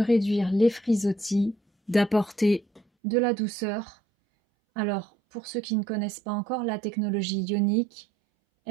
les frisottis, d'apporter de la douceur. Alors, pour ceux qui ne connaissent pas encore la technologie ionique,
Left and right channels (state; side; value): drops out; left; at 2.8 s